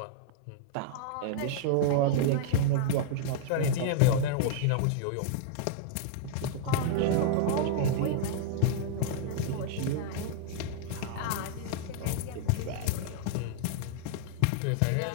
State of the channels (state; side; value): different; both; correlation -0.01